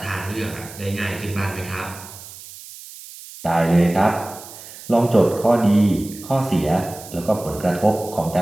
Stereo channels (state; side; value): noise; right; hiss, 16 dB below the sound